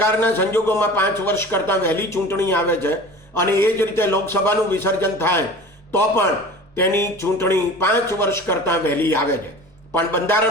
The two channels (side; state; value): both; normal; correlation 0.39